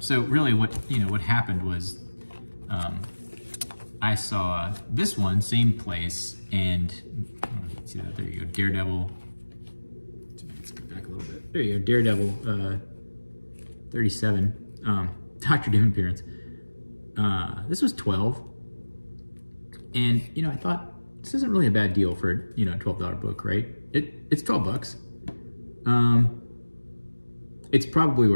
really what happened was I saw this one, same place, and see that, there you go, Daredevil. Let's go back a little bit. There you go, Daredevil 37. Dr. Doom appearance. This was 12, and you know, I thought this isn't really a bad deal for, you know, a $12 book, right? It's $12. It's probably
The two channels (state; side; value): inverted; both; correlation -1.00